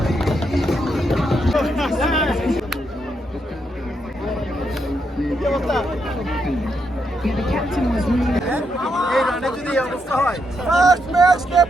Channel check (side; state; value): both; normal; correlation 0.80